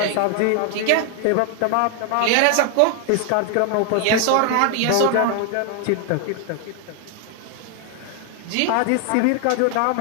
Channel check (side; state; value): both; different; correlation 0.00